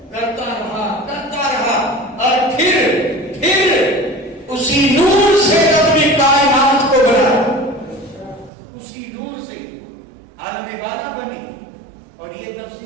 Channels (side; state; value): left; drops out; at 8.5 s